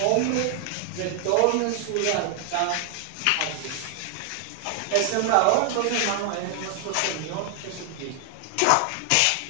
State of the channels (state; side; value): different; both; correlation 0.00